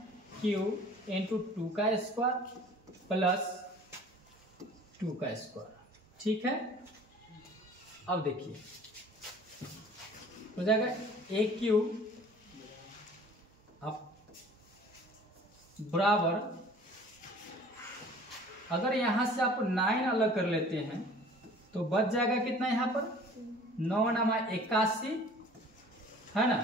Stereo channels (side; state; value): both; normal; correlation 0.48